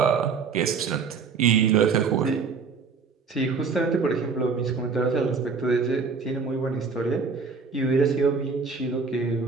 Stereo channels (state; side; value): quieter; left; 5.2 dB